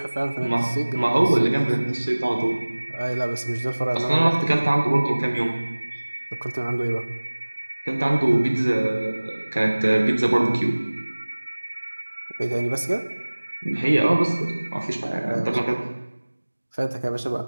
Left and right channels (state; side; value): inverted; both; correlation -1.00